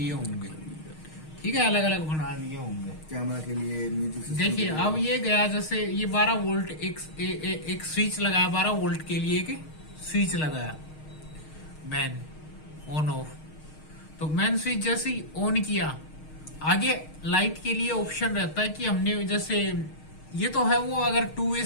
होंगे। ठीक है। अलग अलग बना लिए होंगे कैमरा के लिए, म्यूजिक सिस्टम। देखिए अब ये गया, जैसे ये 12 वोल्ट एक स्विच लगाया, 12 वोल्ट के लिए एक स्विच लगाया, मैन ऑन ऑफ। तो मैन स्विच जैसे ही ऑन किया, आगे लाइट के लिए ऑप्शन रहता है कि हमने जैसे ये तो है वो अगर 2 वे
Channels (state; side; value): late; right; 6.4 ms